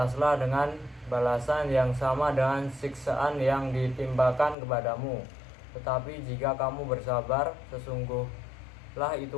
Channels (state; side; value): drops out; right; at 4.5 s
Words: dengan balasan yang sama dengan siksaan yang ditimpakan kepadamu. Tetapi jika kamu bersabar, sesungguhnya